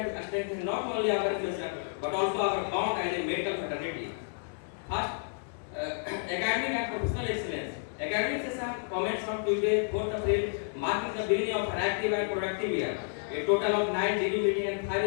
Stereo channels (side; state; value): right; silent; digital silence